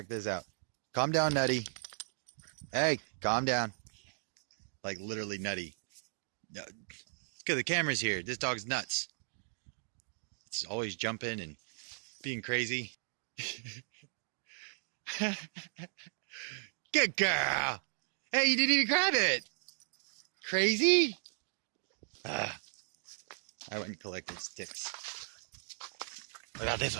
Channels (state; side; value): silent; left; digital silence